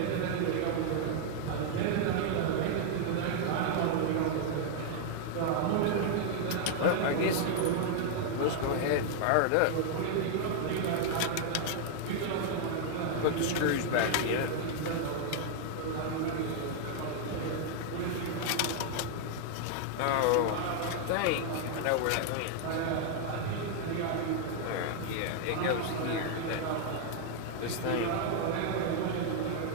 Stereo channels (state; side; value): different; both; correlation 0.00